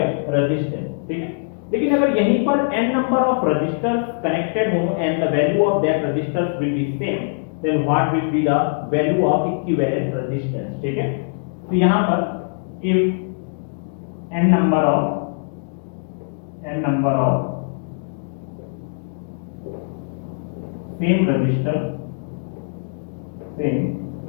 रेजिस्टेंस, ठीक है। लेकिन अगर यहीं पर n number of resistors connected हो and the value of that resistors will be same, then what will be the value of equivalent resistance, ठीक है। तो यहां पर if n number of same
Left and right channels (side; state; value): right; silent; digital silence